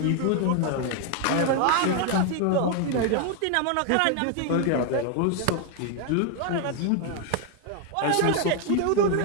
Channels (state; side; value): different; both; correlation 0.01